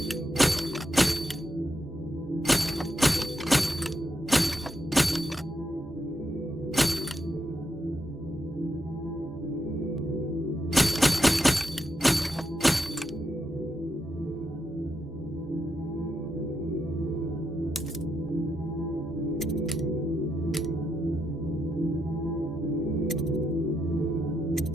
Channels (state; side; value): normal; both; correlation 0.81